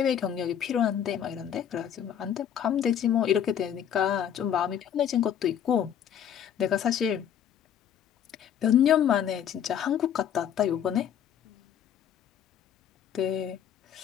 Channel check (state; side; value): quieter; right; 9.3 dB